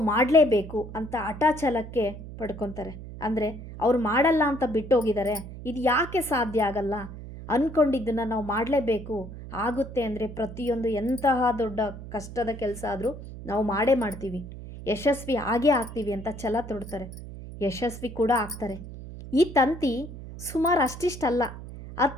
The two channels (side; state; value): right; noise; hum, 12 dB below the sound